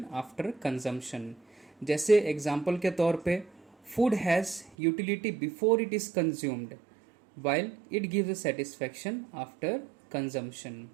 after consumption. जैसे एग्जाम्पल के तौर पे food has utility before it is consumed while it gives a satisfaction after consumption.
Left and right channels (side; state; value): left; drops out; at 4.8 s